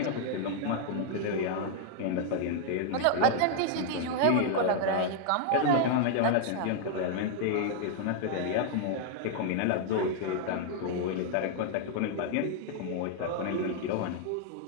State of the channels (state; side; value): different; both; correlation 0.00